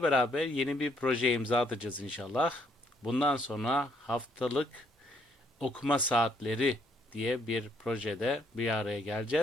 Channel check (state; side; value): normal; both; correlation 0.69